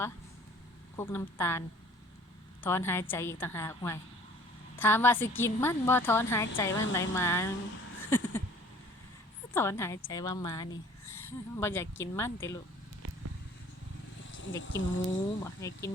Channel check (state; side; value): normal; both; correlation 0.52